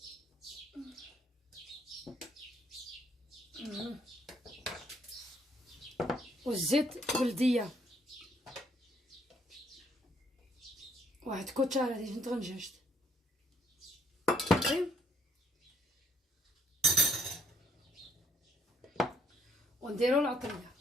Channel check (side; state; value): both; normal; correlation 0.66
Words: والزيت بلديه، واحد كوتشاره ديال طنجاج ونديرو العطريه.